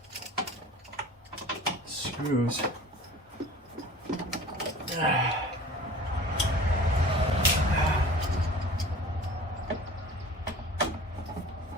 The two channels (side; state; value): both; normal; correlation 0.43